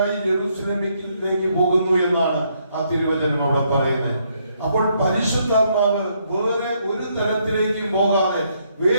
യെരൂശലേമിലേക്ക് പോകുന്നു എന്നാണ് ആ തിരുവചനം അവിടെ പറയുന്നത്. അപ്പോൾ പരിശുദ്ധാത്മാവ് വേറെ ഒരു തലത്തിലേക്കും പോകാതെ,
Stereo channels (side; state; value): both; inverted; correlation -0.73